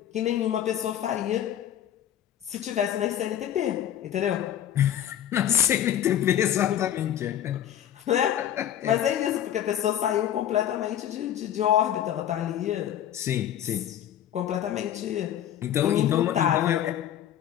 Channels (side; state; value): right; quieter; 10.8 dB